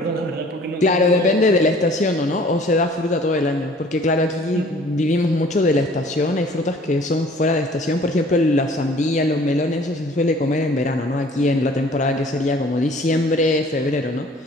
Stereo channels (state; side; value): normal; both; correlation 0.52